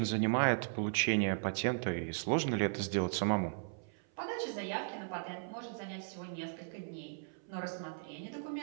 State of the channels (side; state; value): left; silent; 53 dB below the other